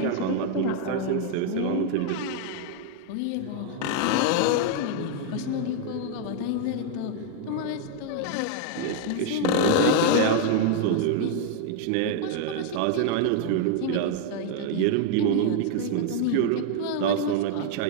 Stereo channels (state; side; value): different; both; correlation 0.00